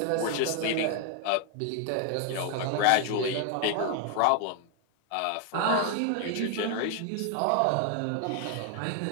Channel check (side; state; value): both; different; correlation 0.00